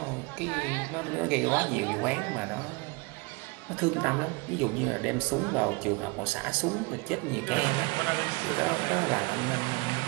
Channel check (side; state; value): left; quieter; 27.6 dB